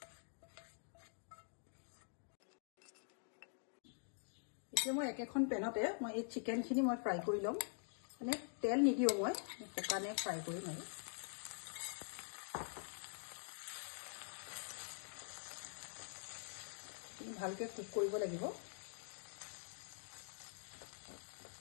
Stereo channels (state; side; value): silent; right; digital silence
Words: এতিয়া মই একেখন পেনতে মই এই চিকেনখিনি মই ফ্ৰাই কৰি ল'ম। মানে তেল নিদিওঁ, মই শুকানে ফ্ৰাই কৰিম আৰু। ভালকৈ কুক কৰিব লাগিব।